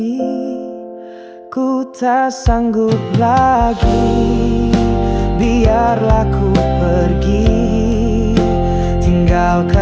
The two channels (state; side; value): identical; both; correlation 1.00